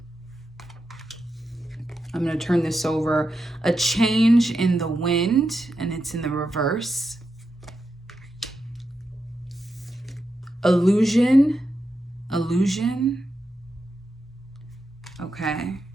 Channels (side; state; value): both; normal; correlation 0.87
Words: I'm going to turn this over. A change in the wind, and it's in the reverse. Illusion. Illusion. Okay.